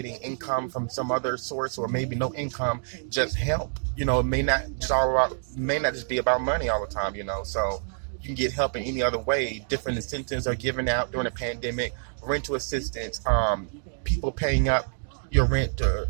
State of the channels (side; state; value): left; silent; digital silence